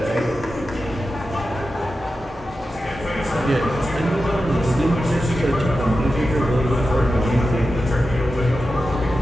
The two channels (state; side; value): normal; both; correlation 0.91